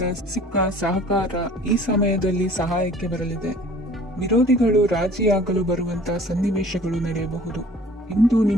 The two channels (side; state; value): both; normal; correlation 0.50